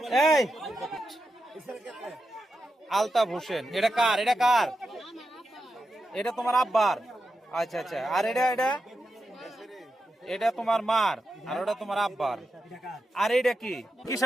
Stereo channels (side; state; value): both; normal; correlation 0.88